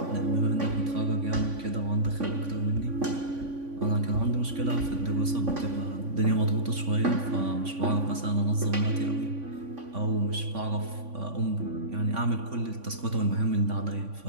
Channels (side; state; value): left; late; 3.5 ms